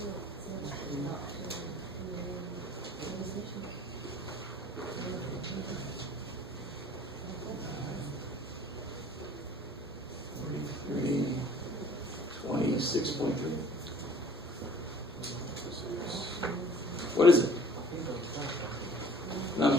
$46.3. What is it? No, I'm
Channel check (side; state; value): both; normal; correlation 0.50